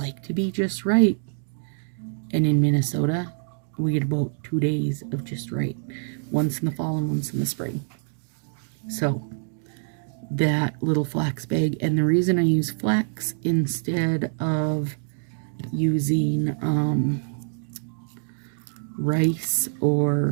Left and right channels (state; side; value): silent; left; digital silence